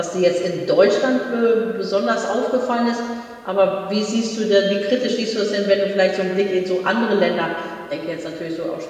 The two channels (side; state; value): both; identical; correlation 1.00